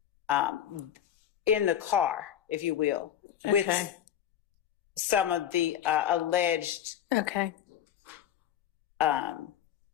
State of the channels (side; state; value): right; quieter; 10.4 dB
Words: in the car, if you will, with some of the alleged